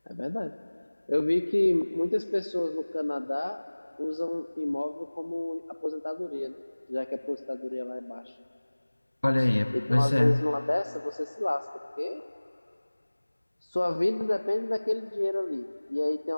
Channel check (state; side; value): inverted; both; correlation -1.00